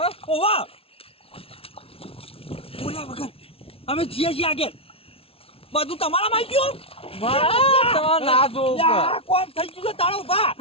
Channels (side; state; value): right; late; 0.27 ms